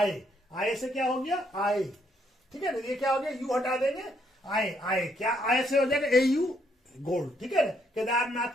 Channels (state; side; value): normal; both; correlation 0.72